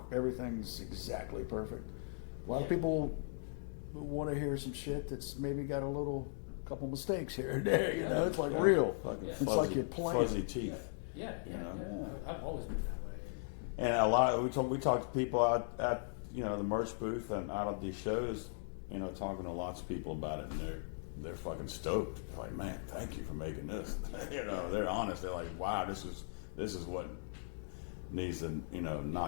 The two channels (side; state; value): right; silent; digital silence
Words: everything's exactly perfect. A lot of people want to hear some shit that's maybe got a couple mistakes here and there. It's like real. It's Fuzzy, like you're playing. fuzzy teeth. Yeah. I've always been that way. And a lot we talk to people out at the merch booth and out of these shows, talking to lots of people about it, and they're fucking stoked. They're like, man, thank you for making this. They're honest. They're like, wow, this is what needs to,